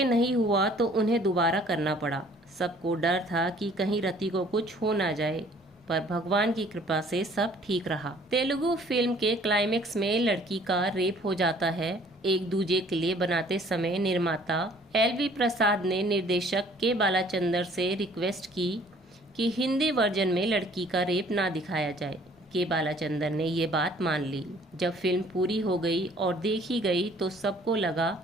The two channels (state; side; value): normal; both; correlation 0.56